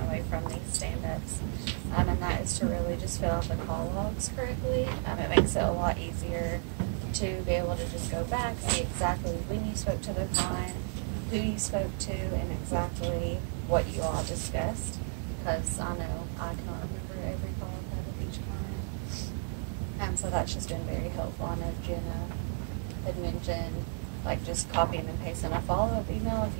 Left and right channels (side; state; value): left; silent; 56 dB below the other